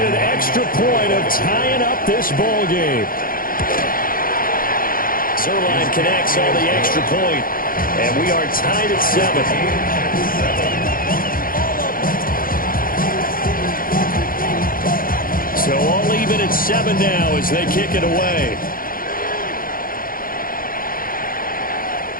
an extra point of tying up this ball game. Zerline connects on the extra point. And we are tied at 7. So all even at 7 now as they kick it away.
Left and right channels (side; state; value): right; late; 0.41 ms